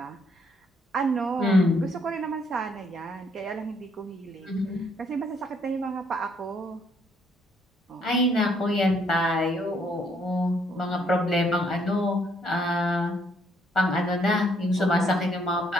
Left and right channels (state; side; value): normal; both; correlation 0.69